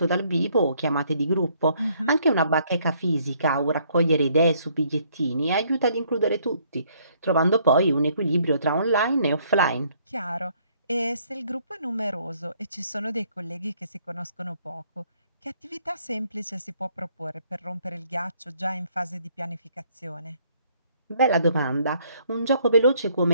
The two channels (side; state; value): both; inverted; correlation -0.66